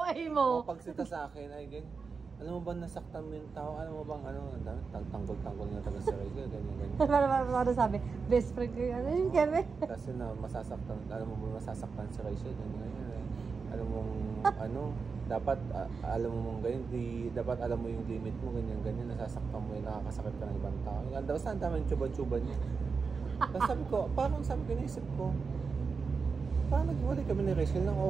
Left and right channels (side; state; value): left; quieter; 5.0 dB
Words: mo. Mapagsita sa akin, ay ganyan. Alam mo ba nasaktan mo yung tao? Alam mo bang ano, tanggol-tanggol na taga sa Rachel, ganyan-ganyan. Para sabi, best friend ko yung ano yung Kevin. Kasi na masasaktan, alam mo ba masasaktan si Rachel, ganyan-ganyan. Alam mong ano, dapat alam mo mong ganyan, dapat alam mo yung limit mo, ganyan-ganyan, nasasaktan mo yung nakakasakit ka ng ibang tao. Basta ang dami yung tsuba-tsuba niya. Tapos sabi ko, parang sabi ko, naisip ko, parang naghiwalay kami ni Rachel nang